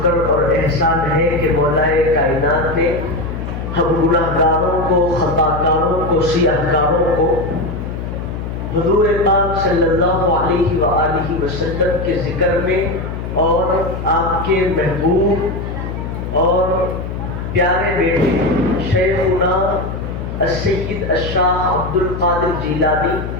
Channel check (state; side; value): noise; left; hum, 6 dB below the sound